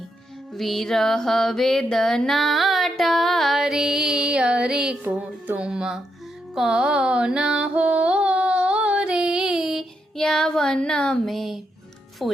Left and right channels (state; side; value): normal; both; correlation 0.81